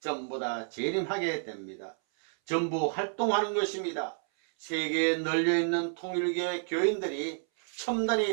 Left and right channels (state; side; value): silent; left; 58 dB below the other